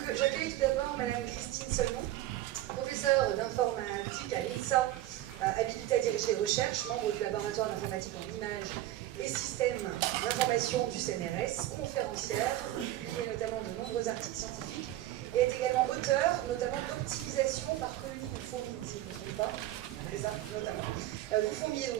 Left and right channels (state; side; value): quieter; left; 14.5 dB